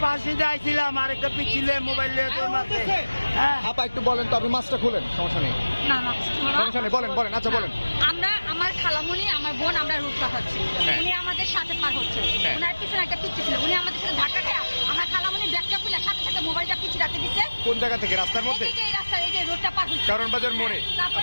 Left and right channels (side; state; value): both; inverted; correlation -1.00